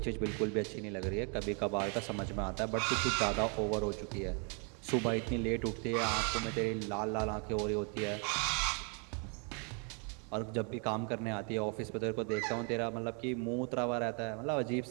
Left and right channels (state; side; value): quieter; left; 37.5 dB